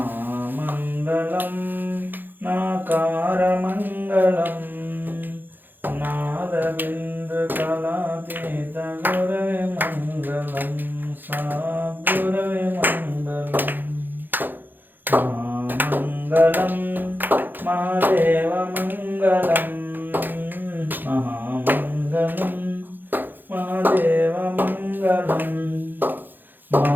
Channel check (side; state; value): left; late; 0.090 ms